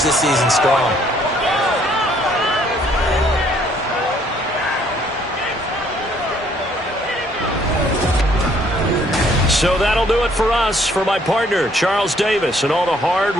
this season strong. So that'll do it for us. For my partner, Charles Davis, and all the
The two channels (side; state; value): both; normal; correlation 0.64